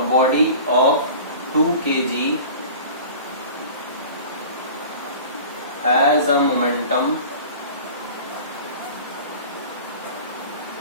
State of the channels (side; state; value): both; inverted; correlation -0.40